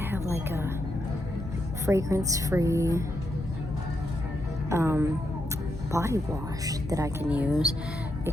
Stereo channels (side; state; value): both; normal; correlation 0.82